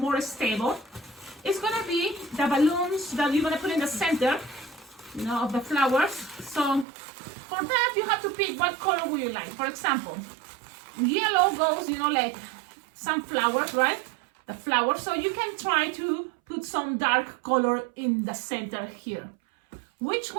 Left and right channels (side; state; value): left; drops out; at 6.9 s